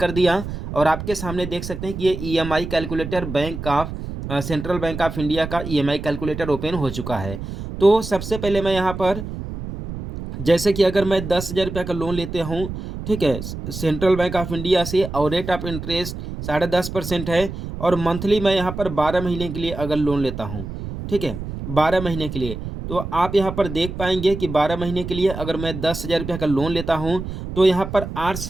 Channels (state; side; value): noise; right; rumble, 8 dB below the sound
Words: दिया और आपके सामने देख सकते हैं कि ये EMI calculator bank of central bank of India का ईएमआई कैलकुलेटर ओपन हो चुका है। तो सबसे पहले मैं यहाँ पर जैसे कि अगर मैं 10,000 रुपया का लोन लेते हूँ, ठीक है, सेंट्रल बैंक ऑफ इंडिया से और रेट ऑफ इंटरेस्ट 10.5% है और मंथली मैं यहाँ पर 12 महीने के लिए अगर लोन लेता हूँ, ठीक है, 12 महीने के लिए, तो आप यहाँ पर देख पाएंगे कि 12 महीने के लिए अगर मैं 10,000 रुपया का लोन लेता हूँ तो यहाँ पर